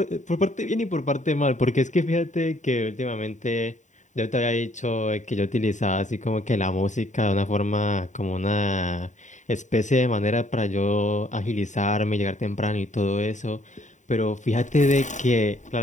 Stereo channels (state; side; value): late; right; 0.35 ms